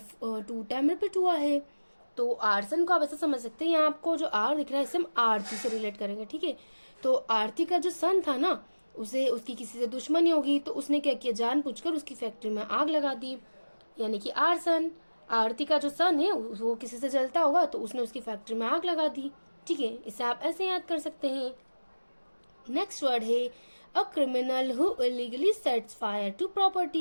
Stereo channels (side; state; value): both; inverted; correlation -1.00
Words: 2 टाइम रिपीट हुआ है। तो आर्सन को आप ऐसा समझ सकते हैं, यहाँ आपको जो आर दिख रहा है इसे हम आरती से रिलेट करेंगे। ठीक है, तो आरती का जो सन था ना उसे उसकी किसी से दुश्मनी होगी तो उसने क्या किया, जानबूझकर उसकी फैक्ट्री में आग लगा दी, यानी कि आर्सन। आरती का जो सन है वो किसी से जलता होगा तो उसने उसकी फैक्ट्री में आग लगा दी। ठीक है, इसे आप ऐसे याद कर सकते हैं। नेक्स्ट वर्ड है a criminal who illegally sets fire to